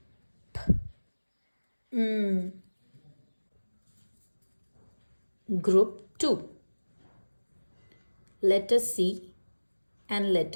M. Group 2. Letter C and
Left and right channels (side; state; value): both; inverted; correlation -1.00